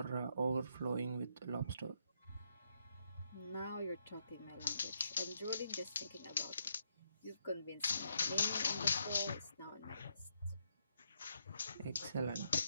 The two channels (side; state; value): both; inverted; correlation -0.77